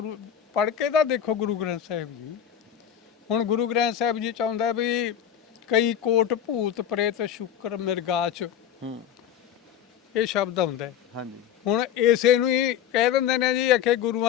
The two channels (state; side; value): quieter; right; 9.6 dB